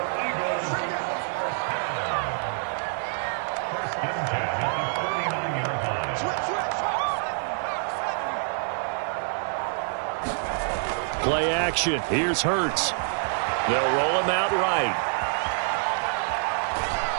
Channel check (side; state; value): left; silent; 58 dB below the other